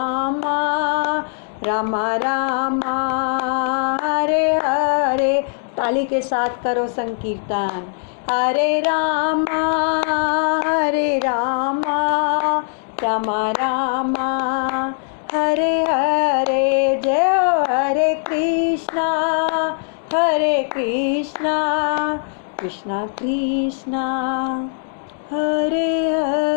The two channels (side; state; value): right; silent; digital silence